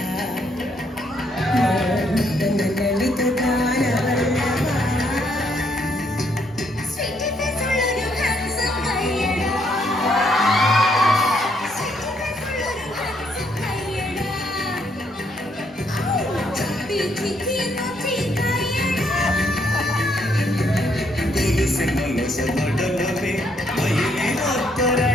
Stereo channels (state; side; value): normal; both; correlation 0.72